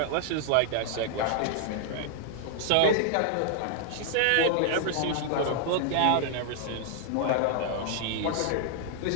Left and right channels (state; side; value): different; both; correlation -0.01